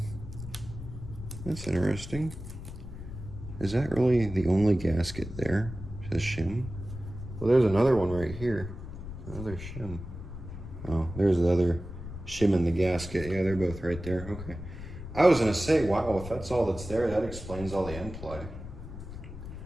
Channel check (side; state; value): left; noise; rumble, 10 dB below the sound